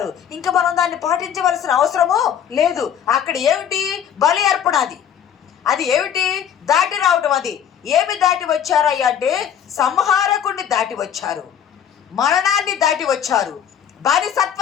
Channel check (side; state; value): right; quieter; 9.0 dB